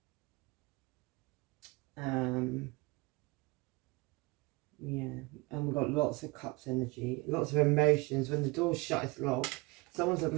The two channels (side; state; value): left; quieter; 25.5 dB